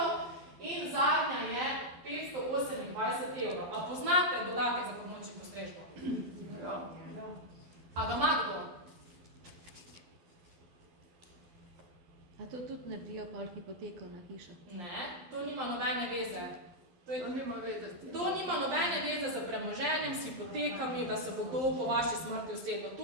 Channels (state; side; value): late; left; 12 ms